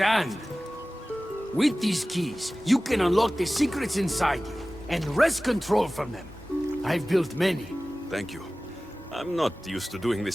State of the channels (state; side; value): normal; both; correlation 0.97